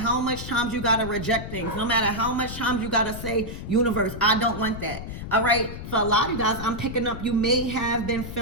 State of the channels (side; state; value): left; noise; rumble, 9 dB below the sound